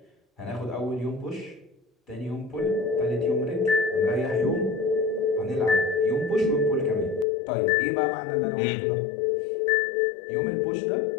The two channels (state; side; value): drops out; right; at 7.2 s